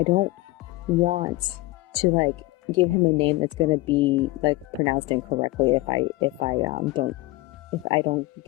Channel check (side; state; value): right; quieter; 20.2 dB